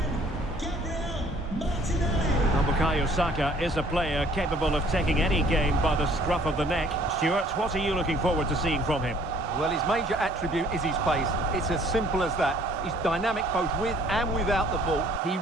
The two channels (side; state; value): both; normal; correlation 0.57